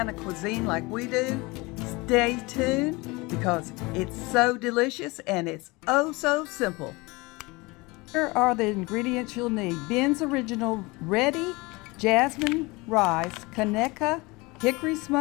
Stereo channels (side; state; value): right; quieter; 24.3 dB